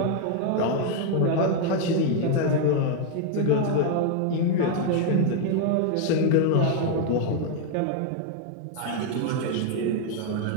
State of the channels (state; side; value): different; both; correlation 0.00